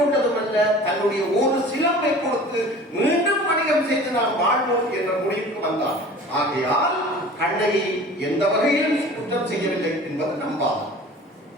தன்னுடைய ஒரு சிலம்பை கொடுத்து மீண்டும் வணிகம் செய்து நாம் வாழ்வோம் என்ற முடிவுக்கு வந்தான். ஆகையால் கண்ணகி எந்த வகையிலும் குற்றம் செய்யவில்லை என்பது நம்பாகும்.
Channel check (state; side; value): normal; both; correlation 0.42